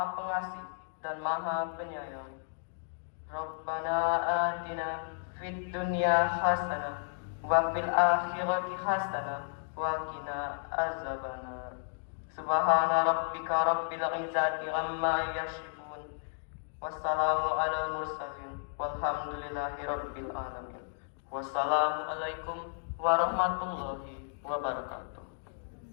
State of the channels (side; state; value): right; silent; digital silence